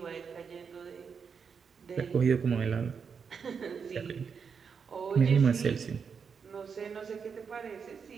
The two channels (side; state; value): left; quieter; 6.2 dB